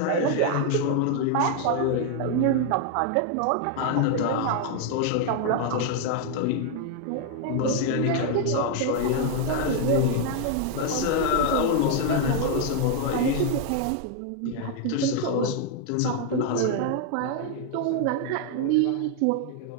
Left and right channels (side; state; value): both; different; correlation 0.00